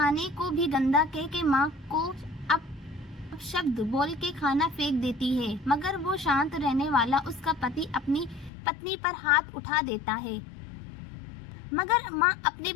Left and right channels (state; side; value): drops out; right; at 8.5 s